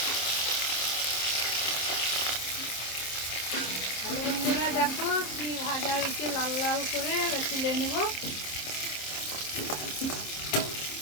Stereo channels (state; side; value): late; right; 26 ms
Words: হ্যালো বন্ধুরা, দেখো কি ভাজা হয়েছে, লাল লাল করে তুলে নেব।